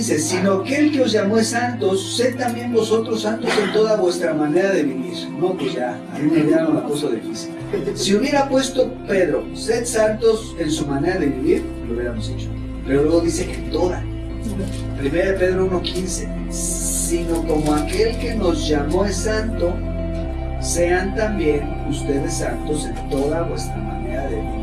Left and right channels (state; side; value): identical; both; correlation 1.00